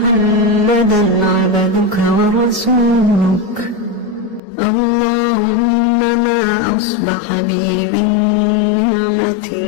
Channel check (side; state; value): right; drops out; at 4.4 s